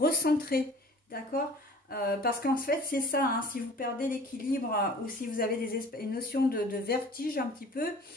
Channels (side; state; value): both; normal; correlation 0.47